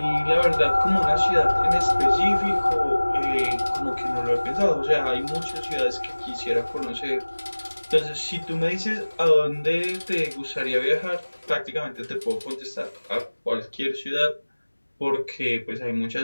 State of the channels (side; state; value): both; inverted; correlation -1.00